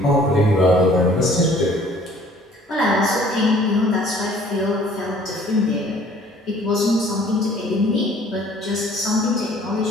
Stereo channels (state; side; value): normal; both; correlation 0.55